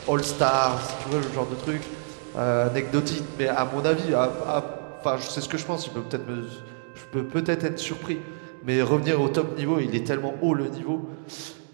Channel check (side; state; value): left; silent; digital silence